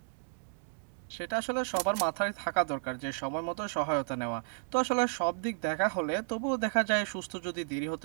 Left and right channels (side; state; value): left; silent; digital silence